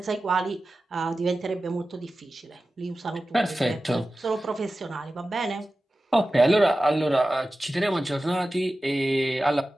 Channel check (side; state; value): both; normal; correlation 0.95